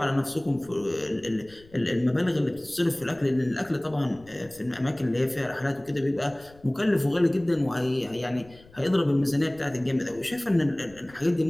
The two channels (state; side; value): noise; left; rumble, 25 dB below the sound